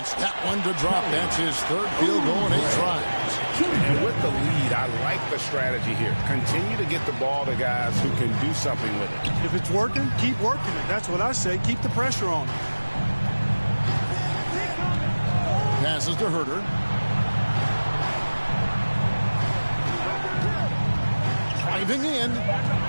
that one to drop. That's his 3rd field goal in 8 tries. And with the lead, I like the strategy here. Continue to get the ball to guys who can do something with it. If it's working, keep working it. That's what I say. Keep the pressure on it. Passes to Herter. Driving in.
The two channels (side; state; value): both; inverted; correlation -1.00